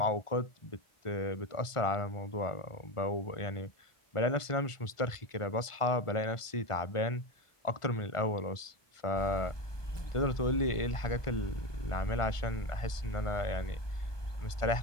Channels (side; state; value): right; late; 1.4 ms